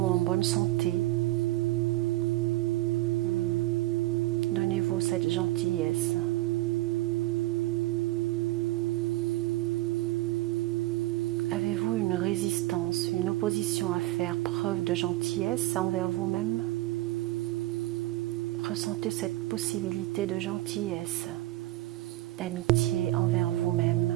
bonne santé. Donnez-vous cette gentillesse. Avez-vous une résistance, une opposition à faire preuve de gentillesse envers vous-même? Ressentez cette possibilité de gentillesse, d'amitié envers vous-même.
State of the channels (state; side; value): quieter; left; 17.8 dB